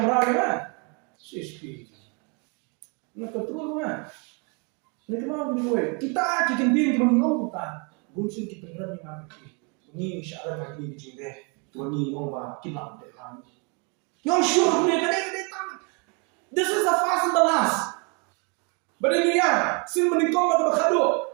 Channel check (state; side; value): quieter; left; 33.8 dB